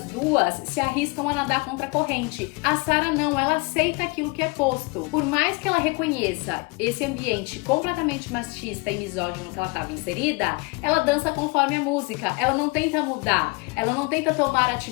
2 se arriscam a nadar contra a corrente. A Sarah não, ela aceita aquilo que é posto. Por mais que ela reconheça esse ambiente completamente machista e misógino que ela estava inserida, ela dança conforme a música, ela não tenta mudar, ela não tenta tomar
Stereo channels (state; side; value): quieter; right; 28.3 dB